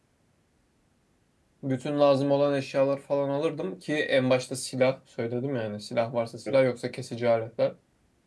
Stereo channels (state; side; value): identical; both; correlation 1.00